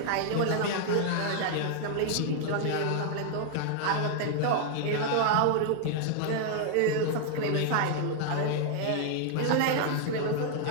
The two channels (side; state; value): both; different; correlation -0.01